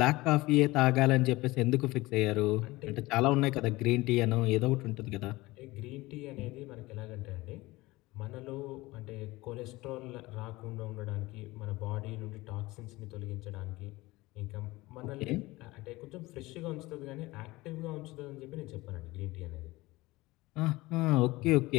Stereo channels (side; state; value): right; quieter; 20.4 dB